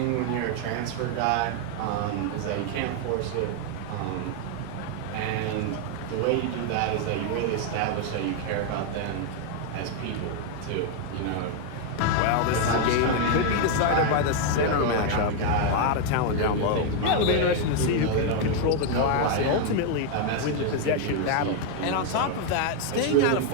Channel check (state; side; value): different; both; correlation 0.00